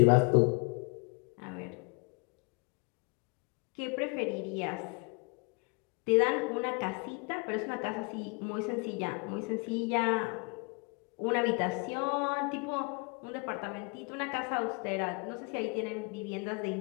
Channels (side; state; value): right; quieter; 32.4 dB